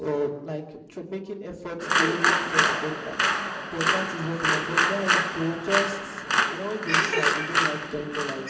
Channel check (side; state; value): both; identical; correlation 1.00